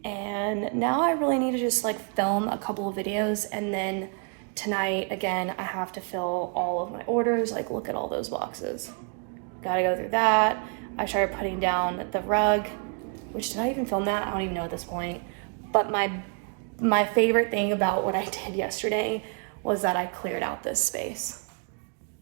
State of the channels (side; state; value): left; quieter; 39.3 dB